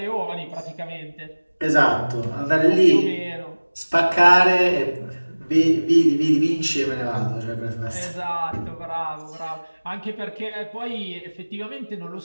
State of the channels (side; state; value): both; inverted; correlation -1.00